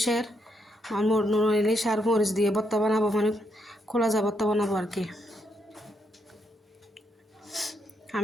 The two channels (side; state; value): both; normal; correlation 0.78